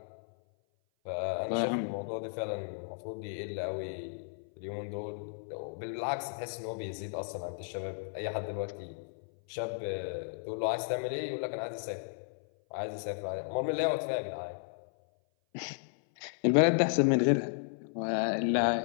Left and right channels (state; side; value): silent; right; 55 dB below the other